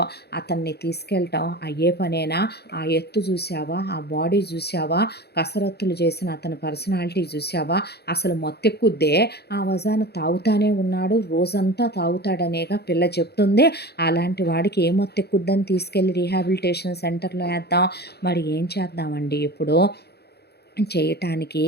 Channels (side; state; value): right; late; 0.48 ms